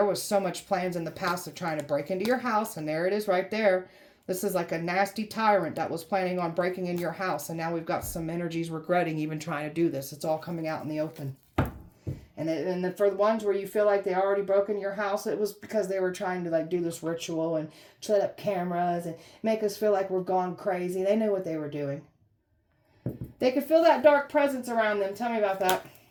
was so much plans in the past of trying to break into your house, and there it is right there. This is like a nasty tyrant that was planning on breaking into your house, and now we've got some energies regretting even trying to do this. It's all coming out in the open. And then for the ones where you feel like they already broke into your house, it was because they were trying to like do this ritual and set up cameras and make us feel like we're gone crazy. They knew what they were doing. They could feel that dark presence around them. Tell me about that.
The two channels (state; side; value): identical; both; correlation 1.00